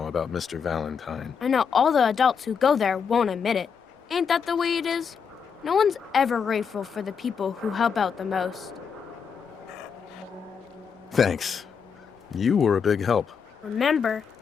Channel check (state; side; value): quieter; right; 6.5 dB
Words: about Mr. Valentine? I know all the adults who go there won't admit it. Ain't that the way it is? No one's ever grateful for the people who help out the most. Thanks. You were a big help. Remember,